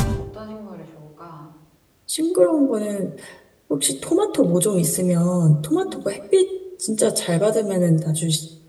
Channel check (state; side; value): identical; both; correlation 1.00